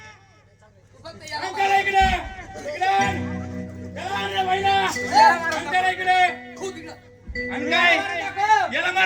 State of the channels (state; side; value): identical; both; correlation 1.00